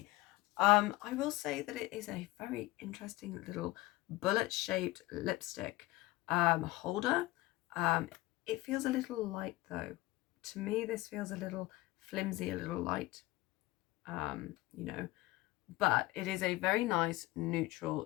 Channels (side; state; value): right; quieter; 19.0 dB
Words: I will say that it is a very interesting little bullet-shaped lipstick holder. It feels a little light though. To me, this feels a little flimsy, a little light, you know, but it is a very nice neutral